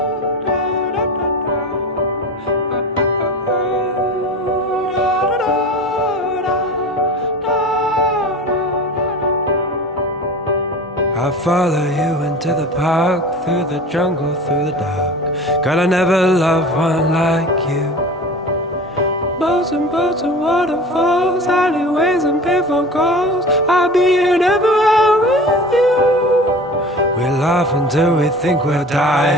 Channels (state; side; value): normal; both; correlation 0.36